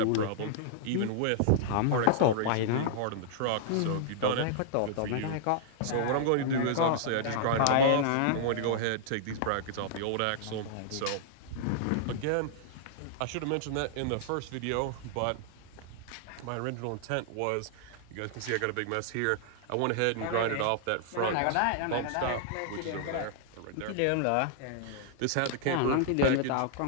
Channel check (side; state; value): both; different; correlation -0.01